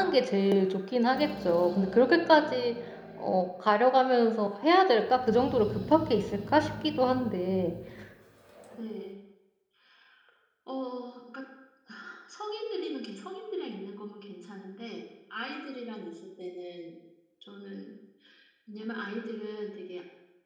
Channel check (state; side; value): identical; both; correlation 1.00